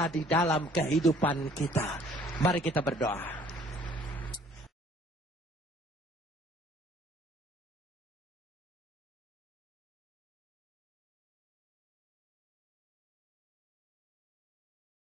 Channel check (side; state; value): both; normal; correlation 0.57